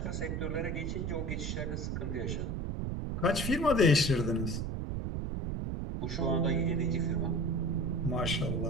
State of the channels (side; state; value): right; noise; rumble, 2 dB below the sound